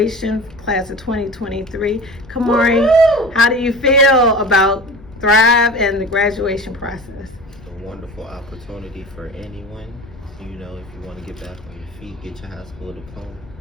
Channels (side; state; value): left; noise; rumble, 21 dB below the sound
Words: class of 2023. Kamari, Woo-hoo! how do you feel about Thrive and the graduation process? A wonderful opportunity for anyone. You know, if you want to get back on your feet, get your high school diploma,